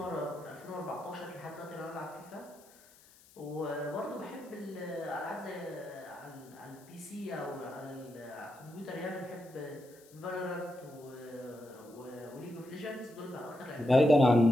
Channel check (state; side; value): noise; left; hiss, 25 dB below the sound